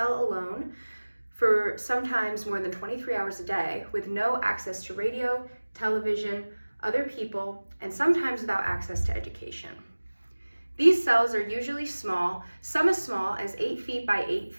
alone for sometimes more than 23 hours a day with no access to radio, television, other people, and sometimes without access to education. These cells are usually small, some as small as 8 feet by 8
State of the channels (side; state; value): both; inverted; correlation -1.00